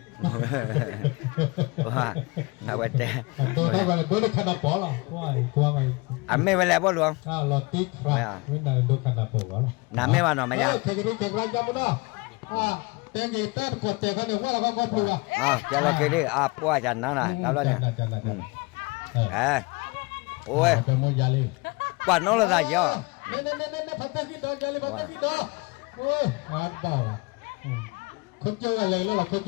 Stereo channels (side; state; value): right; quieter; 26.3 dB